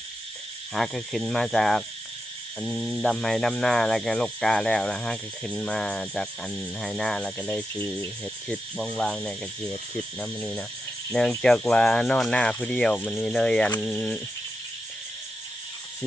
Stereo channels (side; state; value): both; normal; correlation 0.87